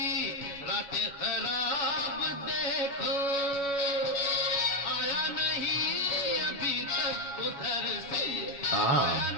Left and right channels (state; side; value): late; right; 7.1 ms